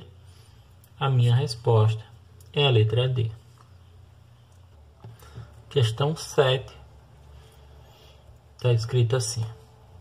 a minha resposta é a letra D. Questão 7. Está escrito assim:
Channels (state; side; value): identical; both; correlation 1.00